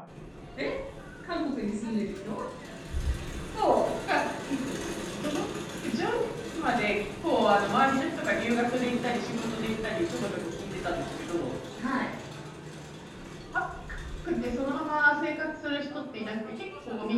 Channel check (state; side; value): identical; both; correlation 1.00